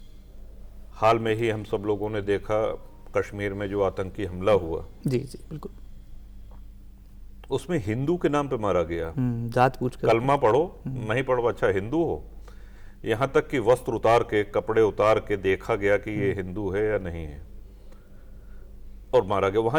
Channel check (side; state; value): both; identical; correlation 1.00